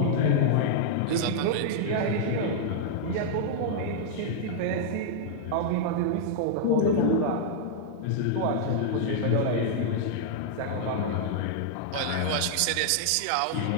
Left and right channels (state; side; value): different; both; correlation -0.01